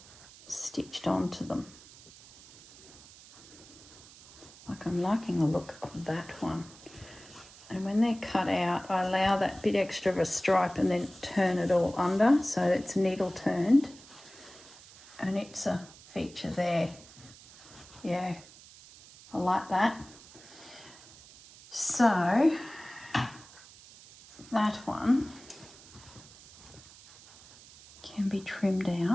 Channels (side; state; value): right; noise; hiss, 21 dB below the sound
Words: stitched onto them. Like I'm liking the look of that one. And when they're cut out, I allow that bit extra of a stripe and then turn it all under so it's needle turned. And it's a feature there. Yeah, I like that. So that one can be trimmed